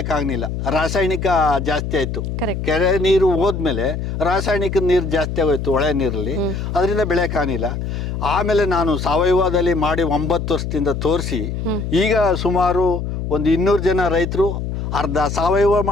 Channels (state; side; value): noise; left; hum, 4 dB below the sound